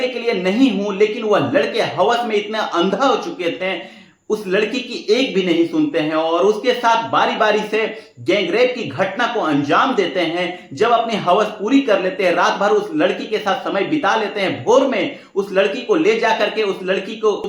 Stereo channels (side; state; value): both; identical; correlation 1.00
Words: के लिए नहीं हूं। लेकिन वह लड़के हवस में इतना अंधा हो चुके थे, उस लड़की की एक भी नहीं सुनते हैं और उसके साथ बारी बारी से गैंगरेप की घटना को अंजाम देते हैं। जब अपनी हवस पूरी कर लेते हैं, रात भर उस लड़की के साथ समय बिता लेते हैं। भोर में उस लड़की को ले जा करके उस लड़की को